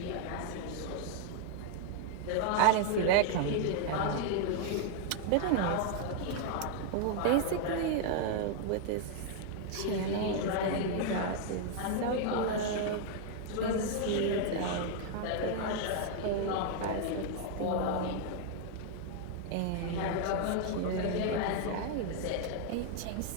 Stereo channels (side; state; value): both; different; correlation 0.00